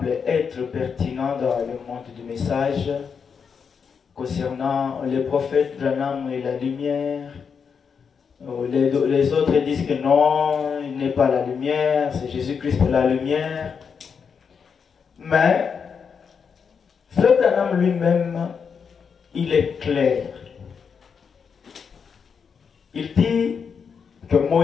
être pertinent dans le monde du message concernant le prophète Branham et la lumière. Les autres disent que non, il n'est pas la lumière, c'est Jésus-Christ la lumière. Mais Frère Branham lui-même, il est clair. Il dit que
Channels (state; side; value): quieter; right; 6.3 dB